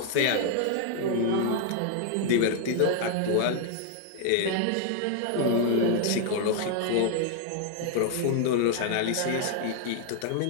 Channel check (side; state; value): both; different; correlation 0.00